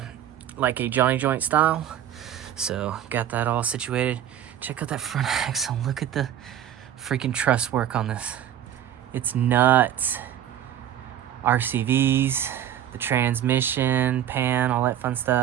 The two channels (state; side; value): quieter; left; 10.7 dB